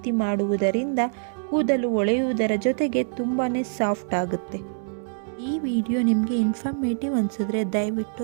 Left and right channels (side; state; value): left; silent; 62 dB below the other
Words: ಮಾಡುವುದರಿಂದ ಕೂದಲು ಹೊಳೆಯುವುದರ ಜೊತೆಗೆ ತುಂಬಾ ಸಾಫ್ಟ್ ಆಗುತ್ತೆ. ಈ ವಿಡಿಯೋ ನಿಮಗೆ ಇನ್ಫಾರ್ಮೇಟಿವ್ ಅನಿಸಿದ್ರೆ